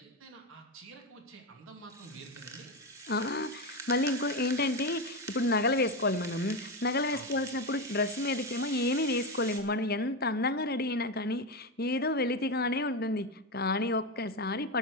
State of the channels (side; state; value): both; normal; correlation 0.14